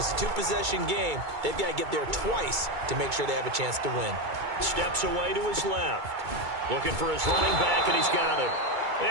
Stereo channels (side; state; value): left; late; 2.2 ms